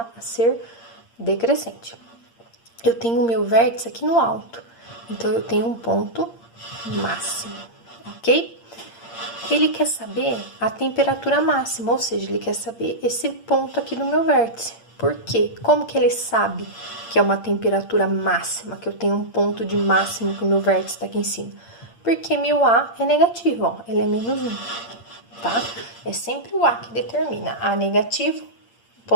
a ser decrescente. Eu tenho o meu vértice aqui no alto, então eu tenho um ponto máximo, ok? Ele quer saber a temperatura máxima, ou seja, ele quer saber esse ponto aqui do meu vértice. Por quê? Como que ele sabe que é uma temperatura máxima, que eu tenho um ponto de máximo que o meu vértice está aqui em cima? Porque meu A é negativo, ó, ele é menos 1. Tá? É sempre o A que determina. A negativo,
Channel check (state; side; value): late; right; 8.7 ms